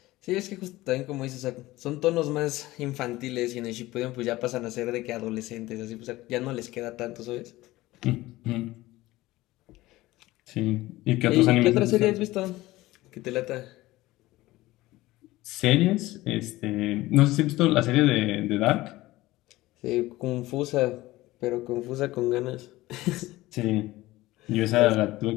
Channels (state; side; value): quieter; right; 18.1 dB